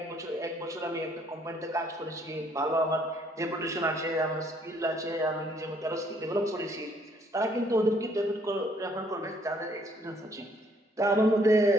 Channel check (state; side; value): normal; both; correlation 0.65